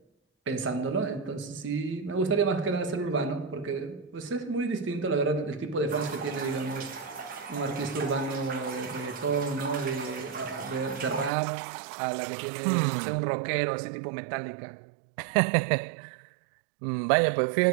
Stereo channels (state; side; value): drops out; left; at 11.3 s